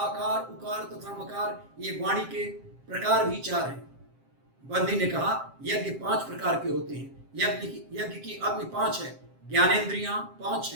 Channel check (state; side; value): late; left; 7.5 ms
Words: उकार तथा मकार ये वाणी के प्रकार भी चार हैं। बंदी ने कहा, यज्ञ पांच प्रकार के होते हैं। यज्ञ की अग्नि पांच है, ज्ञानेंद्रियां पांच